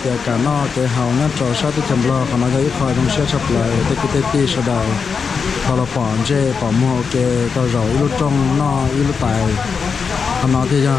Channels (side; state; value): right; quieter; 5.6 dB